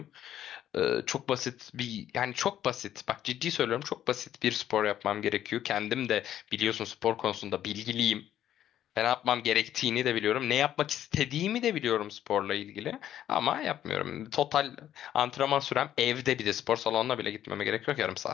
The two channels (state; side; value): quieter; right; 11.3 dB